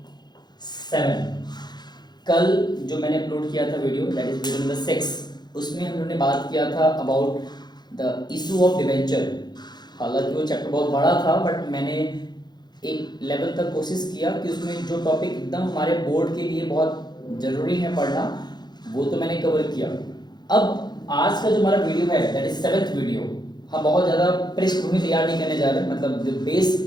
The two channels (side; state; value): right; late; 0.21 ms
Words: 7। कल जो मैंने अपलोड किया था video, that is video number 6, उसमें हम लोगों ने बात किया था about the issue of debenture. हालांकि वो चैप्टर बहुत बड़ा था, बट मैंने एक लेवल तक कोशिश किया कि उसमें जो टॉपिक एकदम हमारे बोर्ड के लिए बहुत ज़रूरी है पढ़ना, वो तो मैंने कवर किया। अब आज का जो हमारा वीडियो है, दैट इज 7th वीडियो। हम बहुत ज़्यादा पृष्ठभूमि तैयार नहीं करने जा रहे, मतलब जो